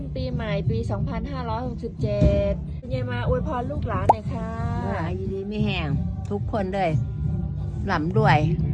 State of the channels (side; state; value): both; identical; correlation 1.00